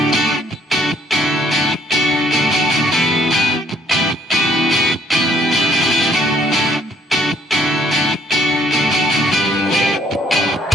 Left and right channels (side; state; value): both; normal; correlation 0.64